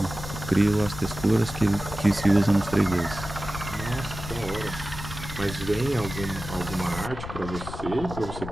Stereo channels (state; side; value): noise; left; rumble, 10 dB below the sound